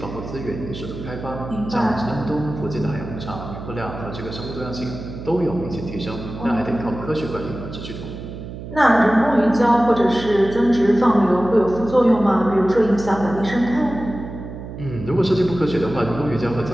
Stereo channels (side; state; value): right; noise; hum, 11 dB below the sound